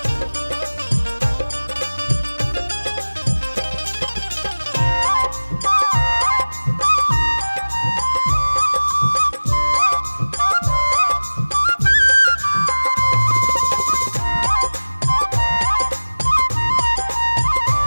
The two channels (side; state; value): both; inverted; correlation -1.00